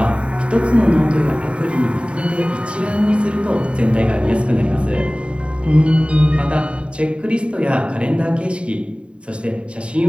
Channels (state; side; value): late; left; 0.058 ms